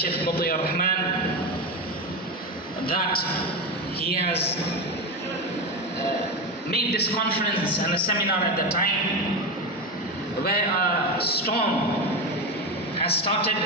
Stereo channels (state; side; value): normal; both; correlation 0.17